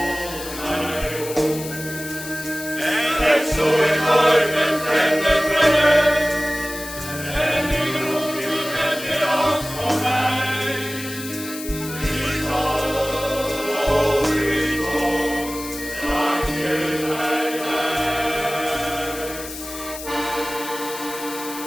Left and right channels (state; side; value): noise; left; hiss, 11 dB below the sound